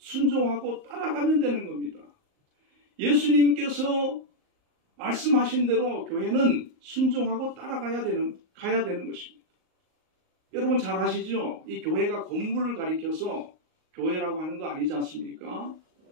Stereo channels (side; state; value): left; late; 38 ms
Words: 따라가면 되는 겁니다. 예수님께서 말씀하신 대로 교회는 순종하고 가야 되는 것입니다. 여러분 잘 아시죠? 이 교회가 건물을 가리켜서 교회라고 하는 거 아니지 않습니까?